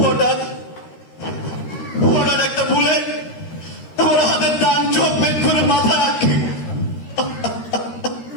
হঠাৎ হঠাৎ একটা বুলেট আমার হাতের ডান চোখ বের করে মাথা রাখে।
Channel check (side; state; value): right; late; 13 ms